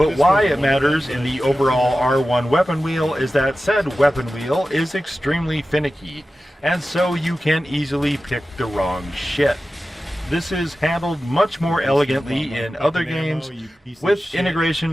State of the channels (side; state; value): both; normal; correlation 0.94